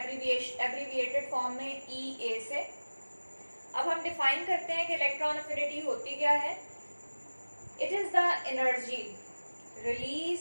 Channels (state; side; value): inverted; both; correlation -1.00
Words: फॉर्म में EA से। अब हम डिफाइन करते हैं कि इलेक्ट्रॉन अफिनिटी होती क्या है। It is the energy